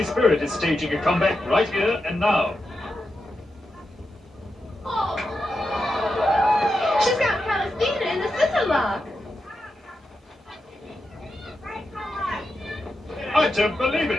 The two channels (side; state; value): both; normal; correlation 0.88